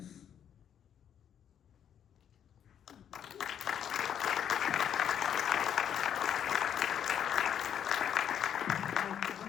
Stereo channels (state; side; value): quieter; right; 9.1 dB